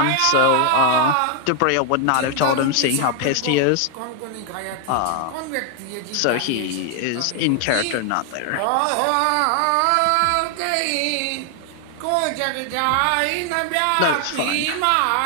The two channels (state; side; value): different; both; correlation 0.00